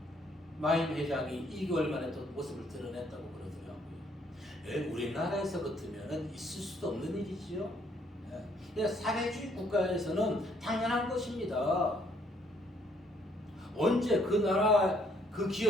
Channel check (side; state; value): both; normal; correlation 0.67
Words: 마임 회장이 2개월 만에 또 모습을 드러냈다고 그러더라고요. 우리나라에서 같으면 있을 수도 없는 일이지요. 사회주의 국가에서는 당연한 것입니다. 언제 그 나라 그